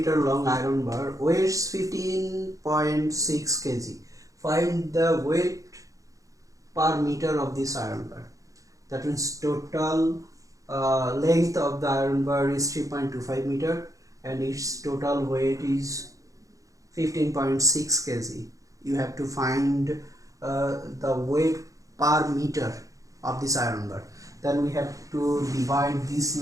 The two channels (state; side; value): late; left; 0.16 ms